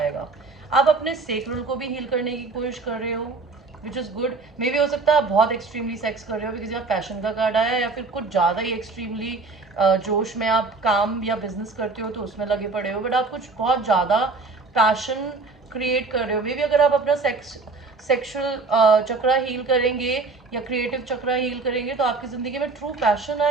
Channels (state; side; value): quieter; left; 4.0 dB